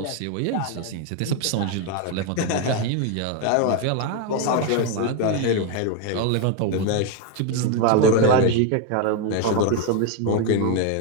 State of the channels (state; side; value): different; both; correlation 0.01